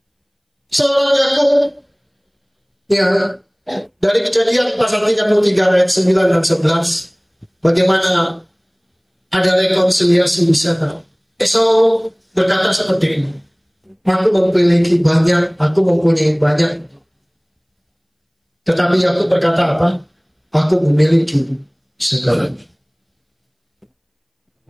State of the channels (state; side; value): identical; both; correlation 1.00